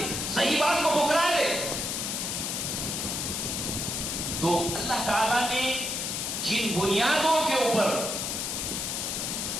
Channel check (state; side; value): noise; left; hiss, 2 dB below the sound